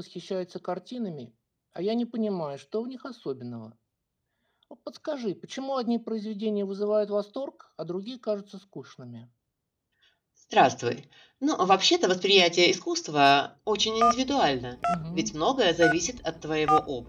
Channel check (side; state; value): both; identical; correlation 1.00